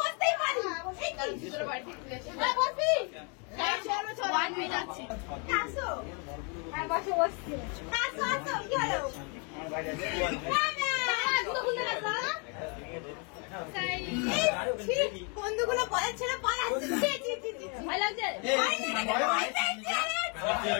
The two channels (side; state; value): right; quieter; 35.8 dB